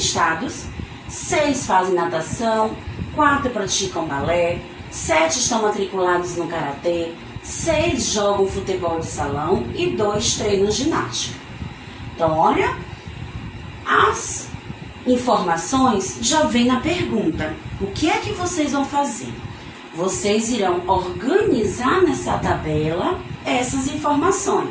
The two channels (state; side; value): identical; both; correlation 1.00